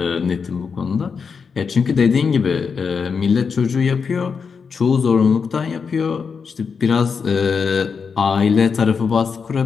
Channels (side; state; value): right; quieter; 5.7 dB